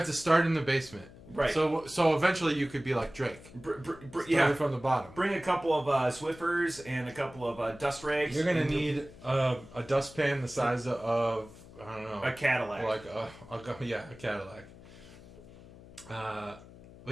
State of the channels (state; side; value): noise; left; hum, 19 dB below the sound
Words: to start in the basement. Right. So eventually you could be like Drake. Yeah. From the bottom. Bring a couple of Swiffers and a couple of dust rags. You're gonna need a dustpan the size of I don't know, a Cadillac. Like a Cadillac.